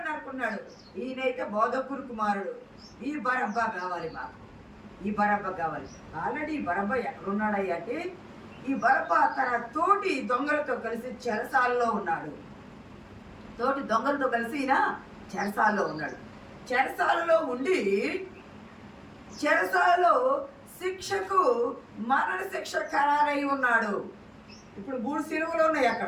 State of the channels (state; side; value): identical; both; correlation 1.00